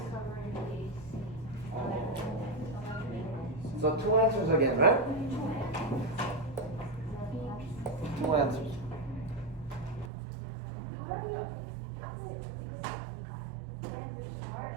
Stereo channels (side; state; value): left; drops out; at 10.1 s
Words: So 2 answers again, right? 2 answers.